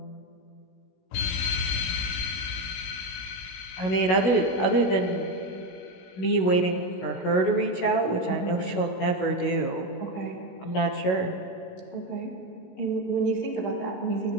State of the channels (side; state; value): right; late; 16 ms